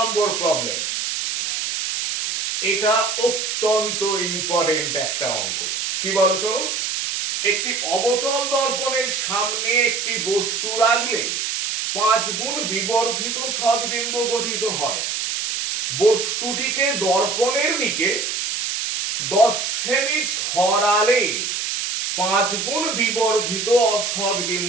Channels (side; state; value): right; noise; hiss, 2 dB below the sound